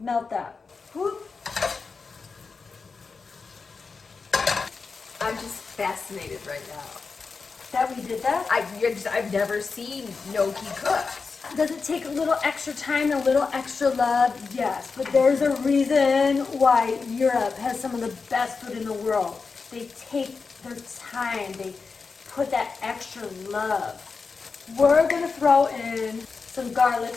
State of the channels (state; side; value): quieter; right; 4.7 dB